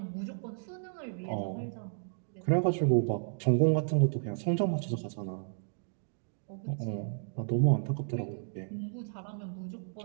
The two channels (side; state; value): left; silent; digital silence